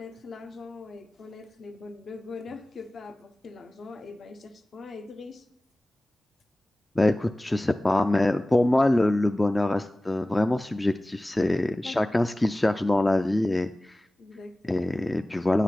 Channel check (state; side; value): normal; both; correlation 0.97